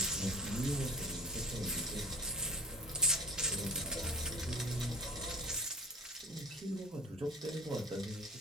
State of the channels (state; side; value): normal; both; correlation 0.43